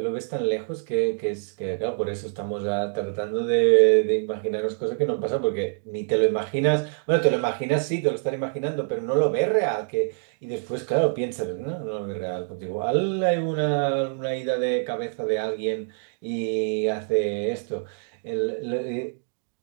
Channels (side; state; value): left; silent; digital silence